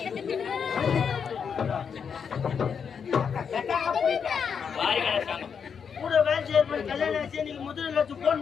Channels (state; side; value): quieter; right; 6.7 dB